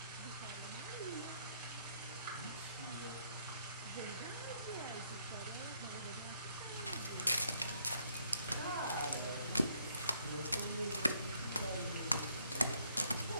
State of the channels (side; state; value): both; inverted; correlation -0.70